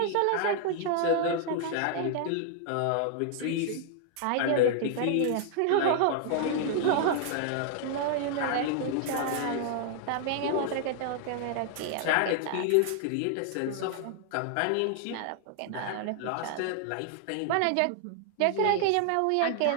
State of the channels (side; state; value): both; different; correlation 0.00